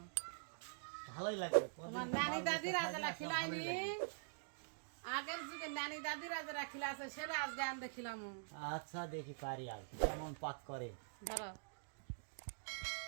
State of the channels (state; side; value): silent; left; digital silence